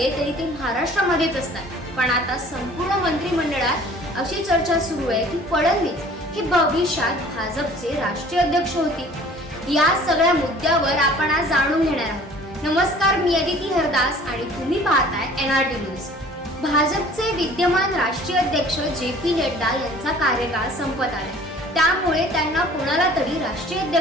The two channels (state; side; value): normal; both; correlation 0.50